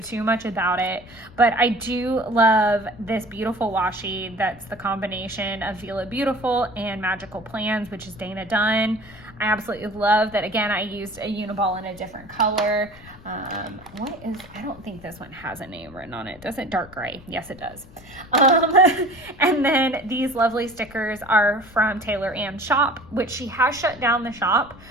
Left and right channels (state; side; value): noise; left; rumble, 21 dB below the sound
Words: much about it, but I do love this beautiful washi that's the combination of Vila Beautiful and Magical Plans, which is Dana Dunn. I absolutely love that. Again, I used a Uniball in a different color. I don't think this one has a name written on it. Does it? Dark gray. Yes, it does. And then these lovely stickers are from Taylor Ann's shop, which she has shut down the shop.